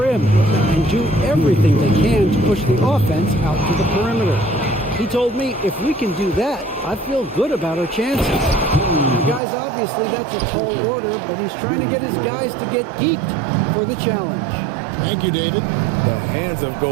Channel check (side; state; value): left; drops out; at 9.4 s